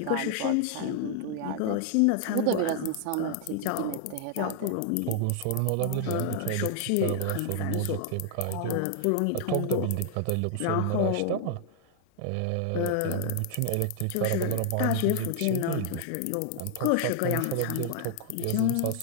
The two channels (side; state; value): both; different; correlation 0.00